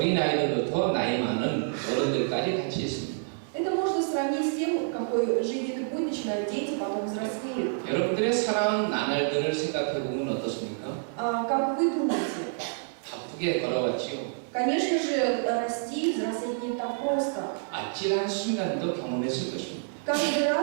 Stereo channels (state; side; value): silent; left; 59 dB below the other